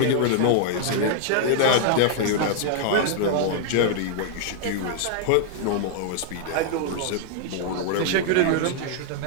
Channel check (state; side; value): different; both; correlation -0.01